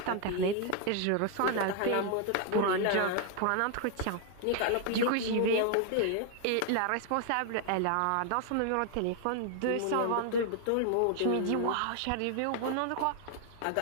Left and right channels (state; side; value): different; both; correlation 0.00